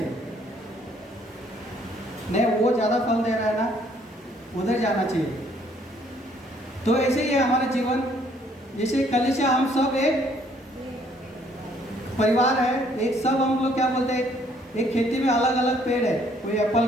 नहीं, वो ज़्यादा फल दे रहा है ना, उधर जाना चाहिए। तो ऐसे ही है हमारा जीवन। जैसे कलीसिया, हम सब एक परिवार है, एक सब हम लोग क्या बोलते हैं, एक खेती में अलग अलग पेड़ है, कोई एप्पल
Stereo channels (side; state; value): both; normal; correlation 0.64